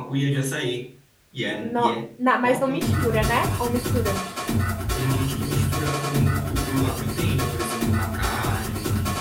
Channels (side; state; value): both; identical; correlation 1.00